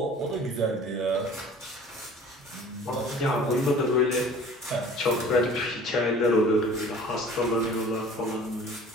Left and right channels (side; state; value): both; normal; correlation 0.46